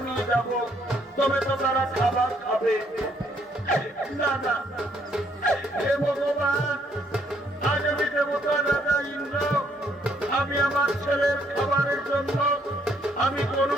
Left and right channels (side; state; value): both; normal; correlation 0.69